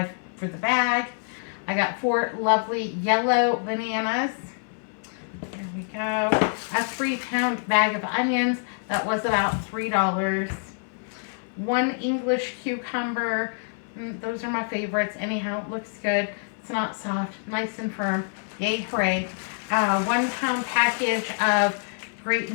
for the bag. I got 4 lovely yellow bananas. There we go. A 3-pound bag of onions. That was about $3. 1 English cucumber. Those are my favorites. Anyhow, it looks good. It's not soft. Nice and firm. Yay, hooray. 1-pound package of Great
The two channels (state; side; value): silent; right; 61 dB below the other